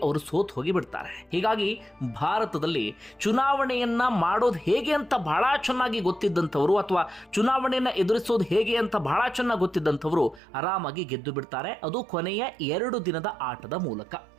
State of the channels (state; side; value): drops out; left; at 10.4 s